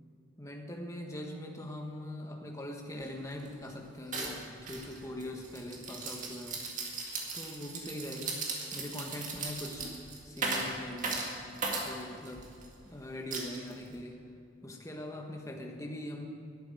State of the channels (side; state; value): both; normal; correlation 0.30